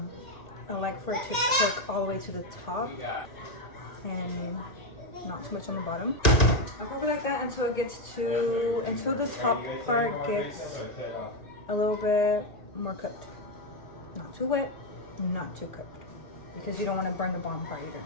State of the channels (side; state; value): right; late; 1.8 ms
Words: like for it to cook all the way to the top and not too much on the bottom. I'll cook it like that until it gets until the top part gets a little bit more cooked. Not too wet, not too cooked, because you don't want to burn the bottom part either.